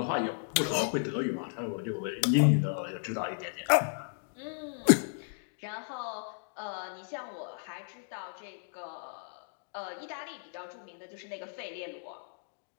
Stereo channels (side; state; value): right; silent; digital silence